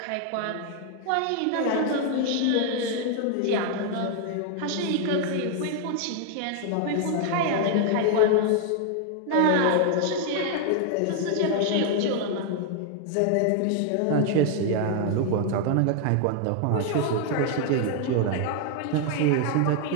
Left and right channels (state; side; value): different; both; correlation 0.00